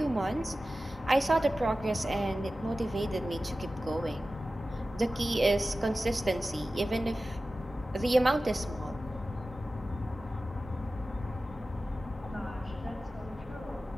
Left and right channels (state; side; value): normal; both; correlation 0.95